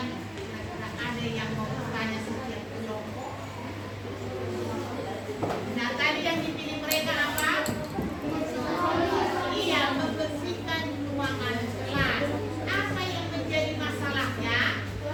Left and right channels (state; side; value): identical; both; correlation 1.00